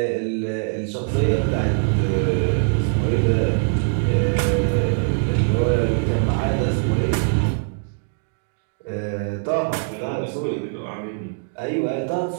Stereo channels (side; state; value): left; silent; 64 dB below the other